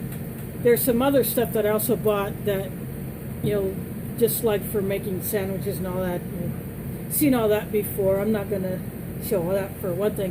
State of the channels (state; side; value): identical; both; correlation 1.00